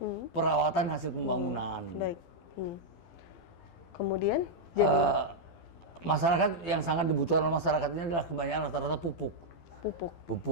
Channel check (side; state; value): right; late; 12 ms